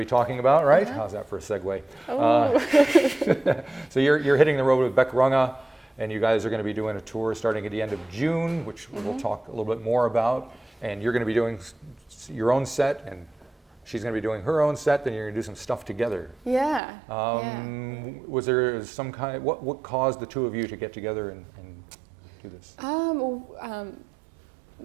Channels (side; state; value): left; drops out; at 16.8 s